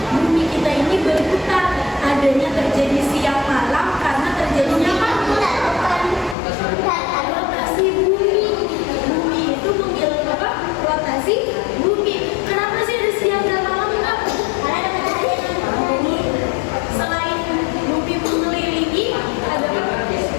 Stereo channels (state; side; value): drops out; right; at 6.4 s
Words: bumi kita ini berputar, adanya terjadi siang malam karena terjadinya apa? Rotasi bumi. Bumi itu mengelilingi apa? Rotasi bumi. Kenapa sih ada siang dan malam Kak? Selain bumi mengelilingi, ada apa?